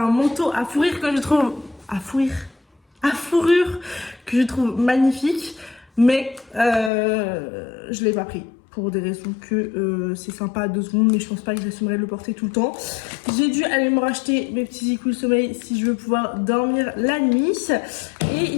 un manteau à fourrure que je trouve... à fourrure que je trouve magnifique, mais je l'ai pas pris. Pour des raisons que c'est sympa à 2 secondes, mais je pense pas que j'assumerai de le porter tout le temps. J'ai dû aller me racheter mes petits écoules sommeil si je veux pouvoir dormir la nuit. Et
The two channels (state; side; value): drops out; right; at 6.9 s